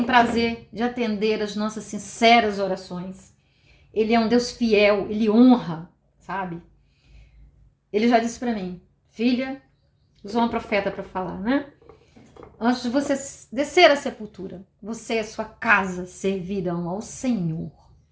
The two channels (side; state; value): both; identical; correlation 1.00